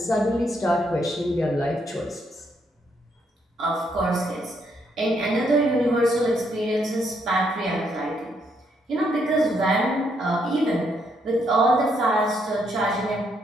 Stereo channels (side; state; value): both; normal; correlation 0.74